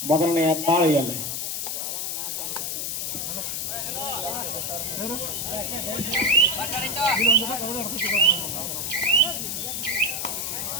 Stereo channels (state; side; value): noise; left; hiss, 2 dB below the sound